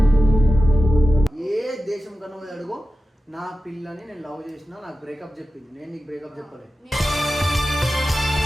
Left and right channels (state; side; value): normal; both; correlation 0.93